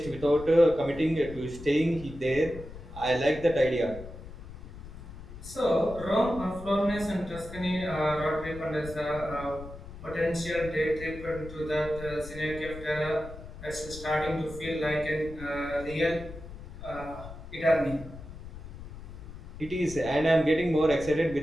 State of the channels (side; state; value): left; noise; rumble, 13 dB below the sound